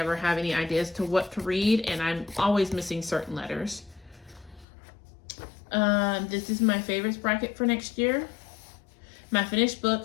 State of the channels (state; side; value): drops out; right; at 4.7 s